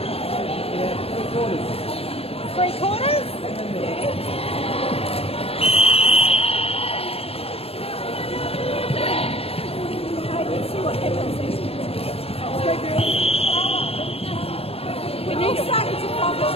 Three quarters? Let's see what happens. We need to start to pop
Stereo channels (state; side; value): late; right; 0.28 ms